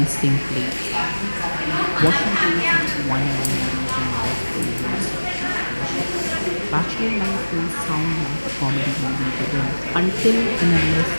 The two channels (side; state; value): both; inverted; correlation -1.00